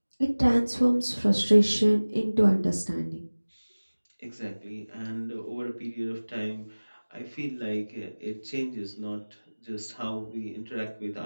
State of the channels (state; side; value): inverted; both; correlation -1.00